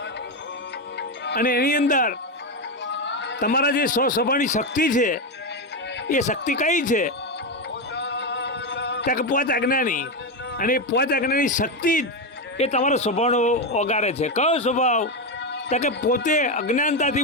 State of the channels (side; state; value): both; normal; correlation 0.10